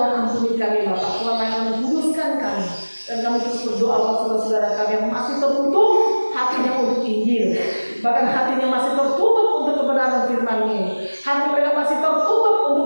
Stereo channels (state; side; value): inverted; both; correlation -1.00